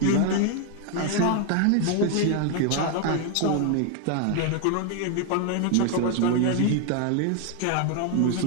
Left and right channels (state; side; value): different; both; correlation 0.01